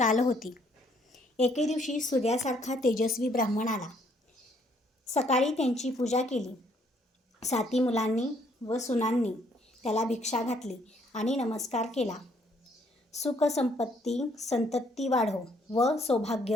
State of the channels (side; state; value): both; normal; correlation 0.66